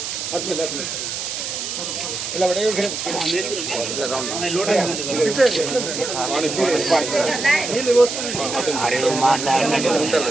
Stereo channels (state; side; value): noise; right; hiss, 5 dB below the sound